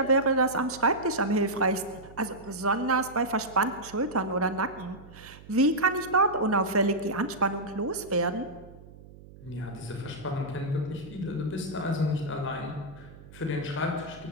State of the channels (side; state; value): right; noise; hum, 19 dB below the sound